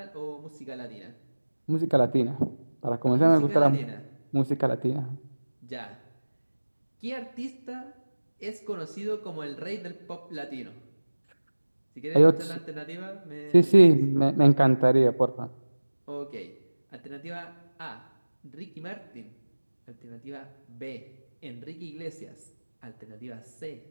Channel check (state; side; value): inverted; both; correlation -1.00